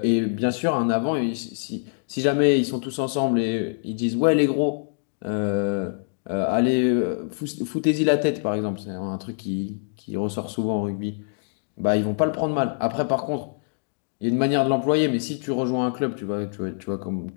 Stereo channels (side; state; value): right; silent; digital silence